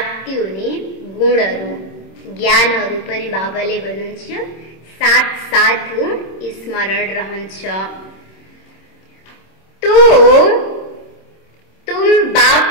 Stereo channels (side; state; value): right; late; 26 ms